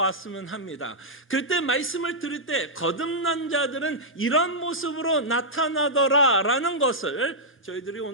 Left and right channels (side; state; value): both; normal; correlation -0.09